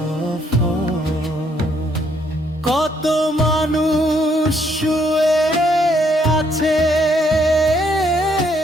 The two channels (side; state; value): both; normal; correlation 0.70